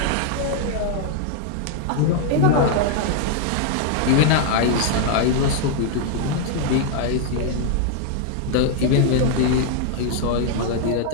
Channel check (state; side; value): different; both; correlation 0.00